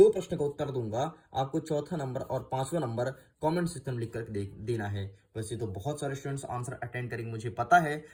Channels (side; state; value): both; identical; correlation 1.00